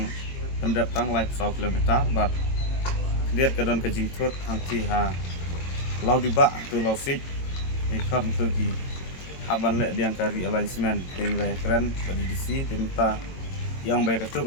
pendatang live 1 kilometer bat lihat ke dan ke jingtut hangti ha lau dibak tu lau sik ikan tu ki haban lek diang kari alignment dengan keren badi disi tenta yang baik itu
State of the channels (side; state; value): right; late; 22 ms